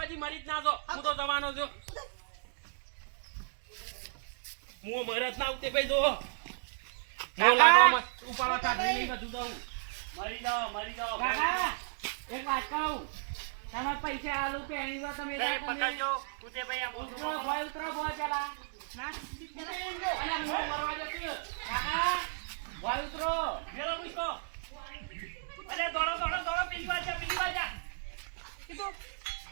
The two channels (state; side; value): silent; left; digital silence